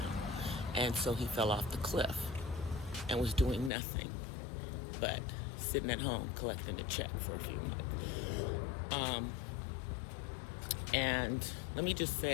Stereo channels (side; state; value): right; drops out; at 3.7 s